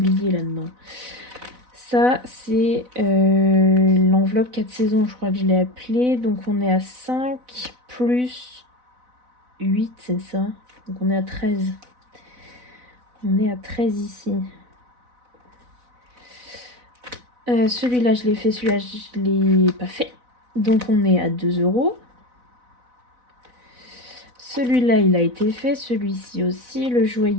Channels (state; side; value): late; left; 4.0 ms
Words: là-dedans. Ça, c'est l'enveloppe 4 saisons, je crois que je l'ai appelée. Donc, on est à 5 plus 8, c'est ça. Donc, on est à 13. On est à 13 ici. Celui-là, je l'ai fait. Celui-là, je l'ai pas fait. Donc, on est à 2 euros. Celui-là, il a été fait. Celui-ci aussi. Le